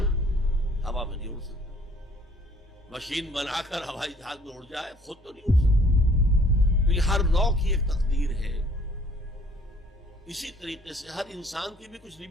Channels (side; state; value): both; normal; correlation 0.58